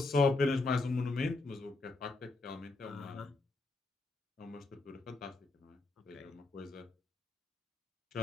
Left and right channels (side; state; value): right; quieter; 3.3 dB